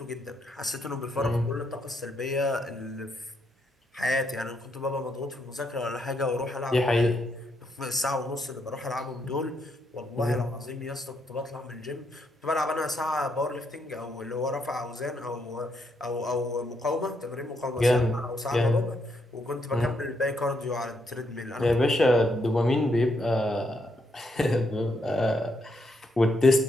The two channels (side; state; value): both; normal; correlation 0.77